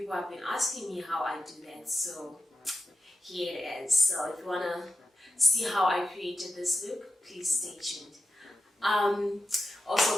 have been asking me how I do that, so here it is. So if you want to see how I created this look, please stay tuned. Also,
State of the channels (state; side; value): normal; both; correlation 0.88